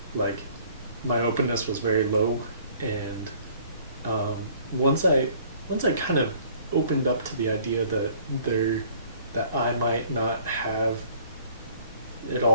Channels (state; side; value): inverted; both; correlation -0.55